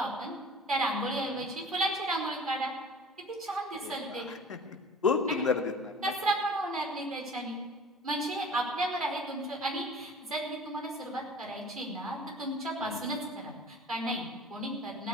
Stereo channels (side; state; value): both; normal; correlation 0.43